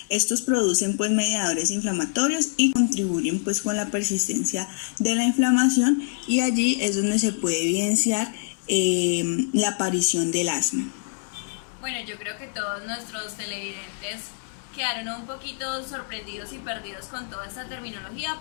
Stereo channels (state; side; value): silent; right; digital silence